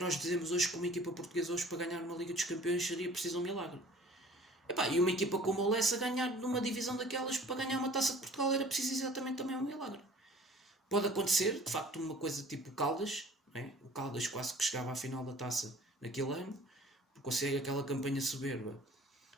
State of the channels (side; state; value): both; normal; correlation 0.50